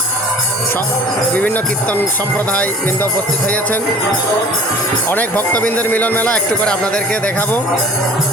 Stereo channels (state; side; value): normal; both; correlation 0.48